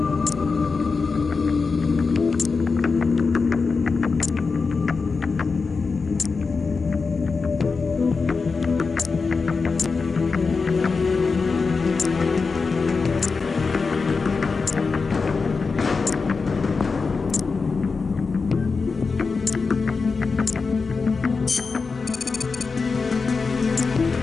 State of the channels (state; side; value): quieter; right; 4.6 dB